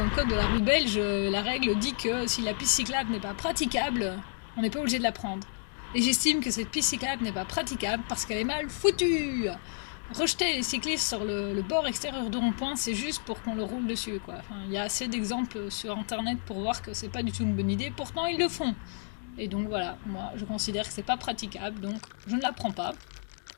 le code de la rue belge, la règle dit que si la piste cyclable n'est pas praticable, on n'est pas obligé de la prendre. Et j'estime que cette piste cyclable n'est pas praticable parce qu'elle est mal foutue. Rejeter les cyclistes sur le bord extérieur du rond-point, c'est juste pour qu'on le roule dessus, quoi. Enfin, il y a assez d'exemples sur internet pour voir que c'est pas du tout une bonne idée, pourtant ils le font. Et donc voilà, moi je considère que c'est pas praticable, donc je ne la prends pas.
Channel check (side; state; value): right; silent; 57 dB below the other